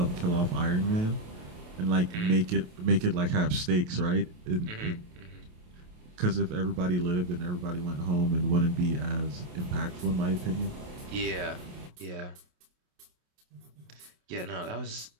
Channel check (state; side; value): late; left; 28 ms